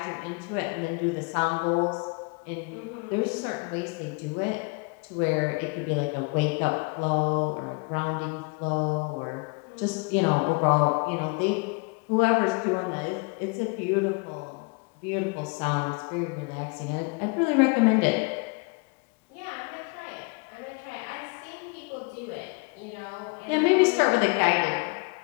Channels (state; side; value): quieter; right; 30.9 dB